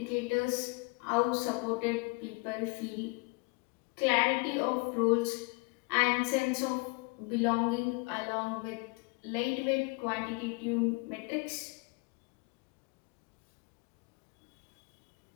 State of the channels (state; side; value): quieter; right; 28.9 dB